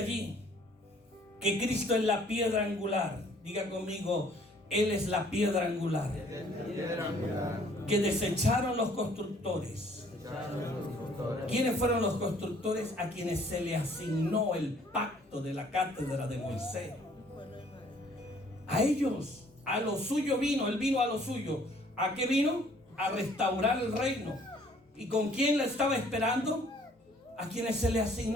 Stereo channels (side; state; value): both; normal; correlation 0.59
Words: que Cristo es la piedra angular. Diga conmigo: Él es la piedra angular. Que desecharon los constructores. ¿Quiénes fueron los constructores? A quienes se le asignó el pacto de la cátedra de Moisés. A ellos, a lo suyo vino. Él vino a lo suyo. ¿A qué vino? A restaurar el reino. ¿Y con quién la estaba esperando? A quienes se le